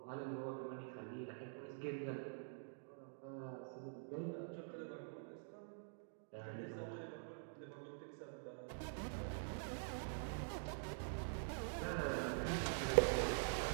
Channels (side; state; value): left; silent; digital silence